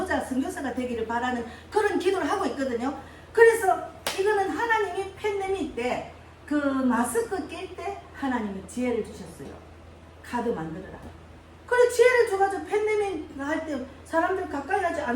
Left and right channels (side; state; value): both; identical; correlation 1.00